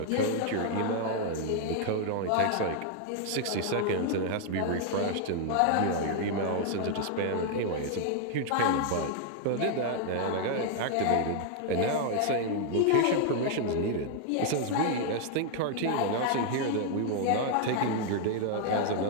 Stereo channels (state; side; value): different; both; correlation 0.00